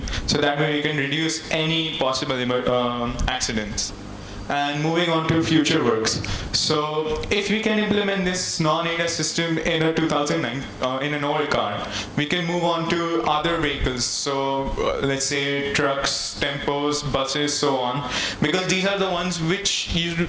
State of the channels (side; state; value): both; identical; correlation 1.00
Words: so that way we can reduce any possible accidents. And moving on to future works. So if we can implement this non-ADAS system in a 2009 in an old car, we can move on to other vehicles. So let's say trucks, tempos, buses, so on, because these are the ones which you